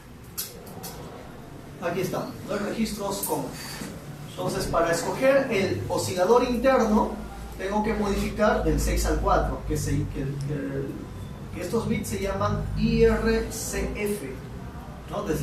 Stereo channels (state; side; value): identical; both; correlation 1.00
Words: Aquí está, el registro OSCON. Entonces, para escoger el oscilador interno, tengo que modificar del 6 al 4, que estos bits se llaman IRCF, ¿no?